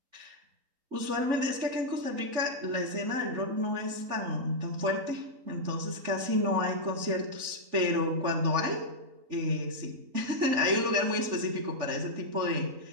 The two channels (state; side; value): late; left; 3.5 ms